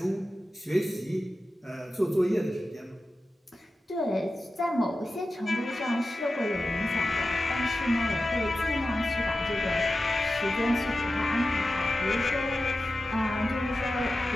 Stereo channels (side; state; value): both; normal; correlation 0.93